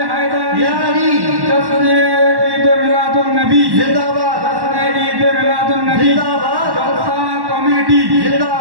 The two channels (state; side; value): late; left; 1.1 ms